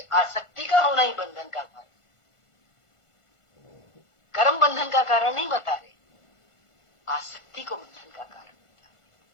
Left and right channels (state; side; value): late; right; 1.5 ms